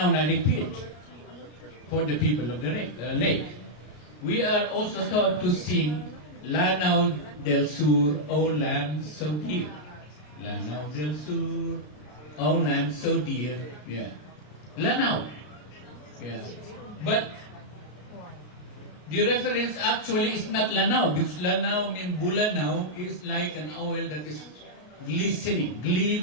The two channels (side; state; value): right; late; 33 ms